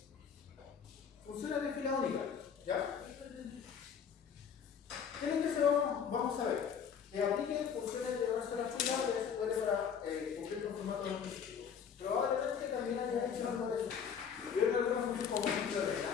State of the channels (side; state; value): right; quieter; 7.3 dB